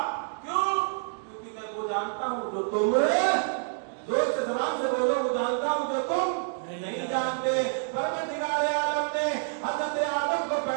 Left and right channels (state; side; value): silent; left; digital silence